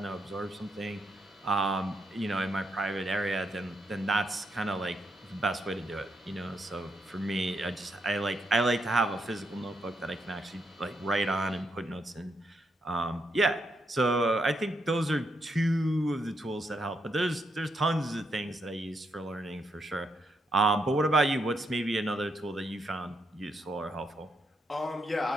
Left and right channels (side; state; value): both; normal; correlation 0.79